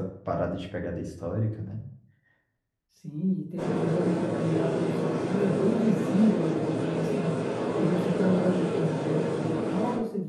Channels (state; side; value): identical; both; correlation 1.00